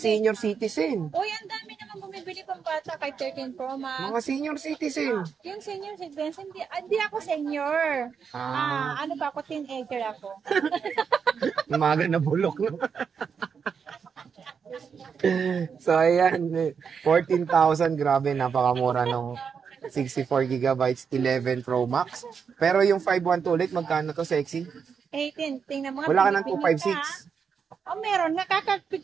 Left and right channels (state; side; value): quieter; left; 6.4 dB